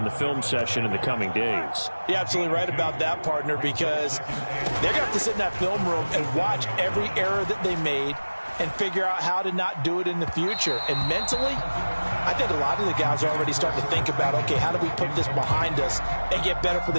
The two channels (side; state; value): both; inverted; correlation -1.00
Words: the film session in the coming days. You're absolutely right about that, partner, because they're going to have to sit in that film room and watch every error that they made and figure out how to not do it in the future. And mentally, I think a lot of the guys are already starting to think about, okay, how do we put this behind us and get better for